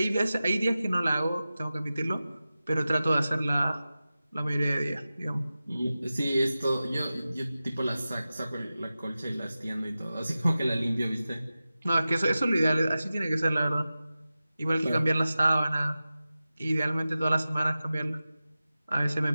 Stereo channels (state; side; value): inverted; both; correlation -0.95